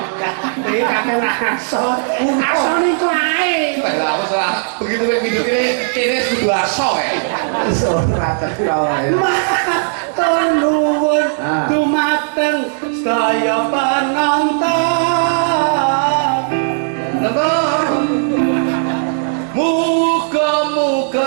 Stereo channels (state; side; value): silent; left; digital silence